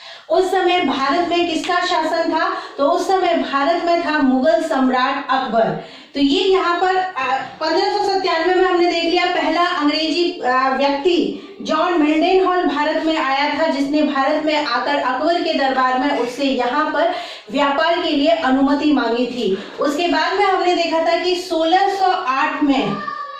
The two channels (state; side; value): identical; both; correlation 1.00